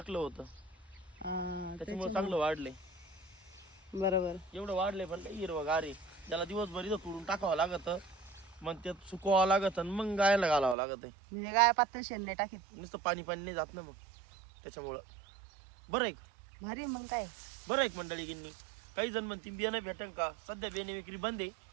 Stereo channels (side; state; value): left; drops out; at 10.8 s